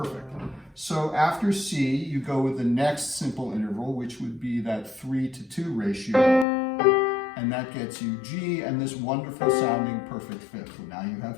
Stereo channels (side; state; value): right; drops out; at 6.5 s